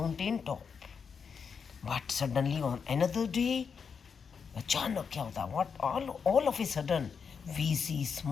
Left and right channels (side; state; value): right; quieter; 6.2 dB